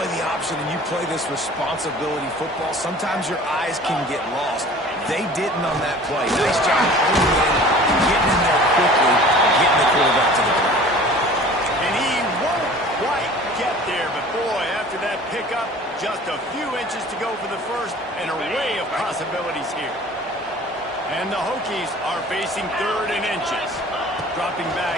the option and you play this responsibility football, sometimes your eyes can get lost. They didn't on that play. Nice job holding in, getting in there quickly, getting the quarterback to the ground. And he won't quite get there, but boy, after that pickup, just a few inches to go for the first, an array of possibilities here. And the Hokies are facing third and inches. Dropping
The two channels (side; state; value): both; normal; correlation 0.45